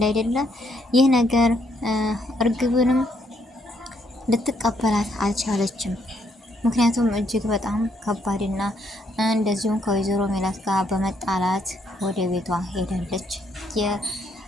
አይደለ? ይህ ነገር እርግብንም ልትቀበላት አልቻለችም። ምክንያቱም እጅግ በጣም ከባድና እንደዚሁም ከወይዘሮ ሜላት ጋር በመጣላት ወደ ቤቷ ሄዳለች።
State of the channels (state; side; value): normal; both; correlation 0.72